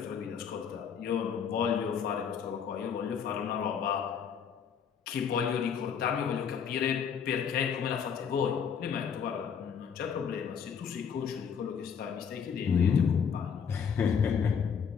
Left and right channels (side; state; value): right; quieter; 7.2 dB